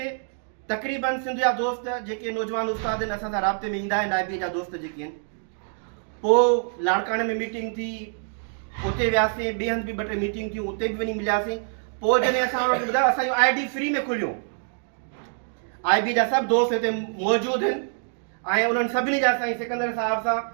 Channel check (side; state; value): left; silent; 59 dB below the other